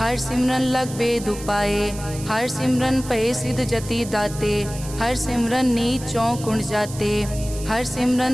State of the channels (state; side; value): noise; right; hiss, 14 dB below the sound